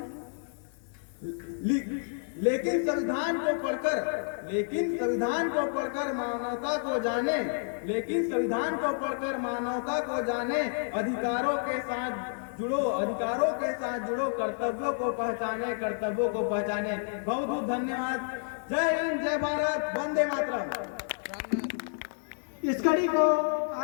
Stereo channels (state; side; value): silent; right; digital silence